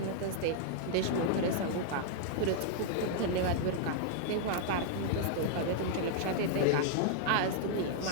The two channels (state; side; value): different; both; correlation -0.01